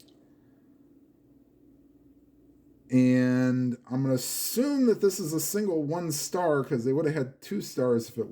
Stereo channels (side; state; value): both; identical; correlation 1.00